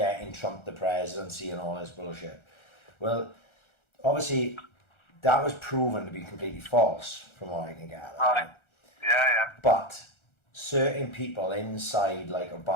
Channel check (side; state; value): right; late; 1.4 ms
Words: Trump the presidency and all this bullshit. Well, obviously, that was proven to be completely false, from what I can gather. Right. Yeah. But certain people inside, like